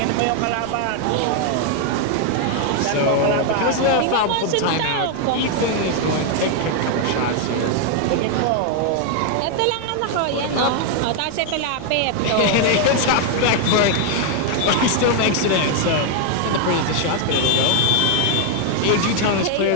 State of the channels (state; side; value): different; both; correlation 0.00